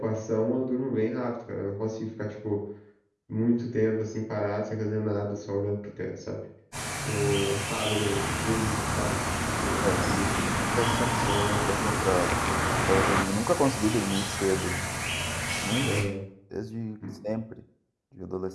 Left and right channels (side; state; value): both; identical; correlation 1.00